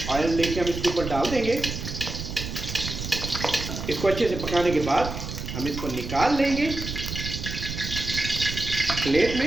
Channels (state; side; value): noise; right; rumble, 6 dB below the sound